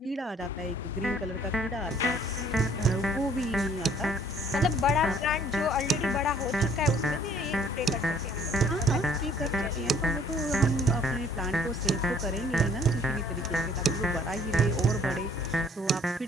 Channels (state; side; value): normal; both; correlation 0.59